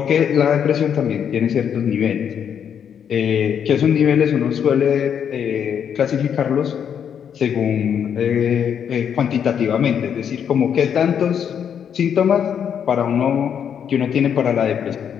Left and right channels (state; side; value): quieter; right; 8.2 dB